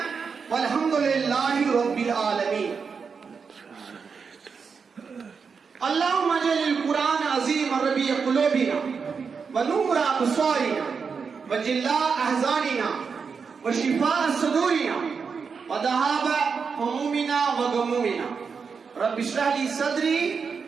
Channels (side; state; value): left; quieter; 5.6 dB